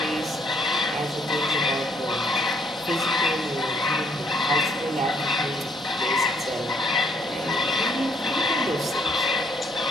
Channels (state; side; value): normal; both; correlation 0.67